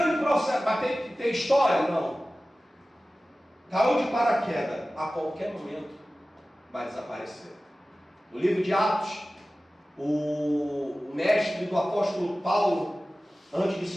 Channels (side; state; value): both; normal; correlation 0.96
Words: processo, mas tem história? Não. Caiu de paraquedas, a qualquer momento vai desaparecer. No livro de Atos, o mestre do apóstolo Paulo, antes de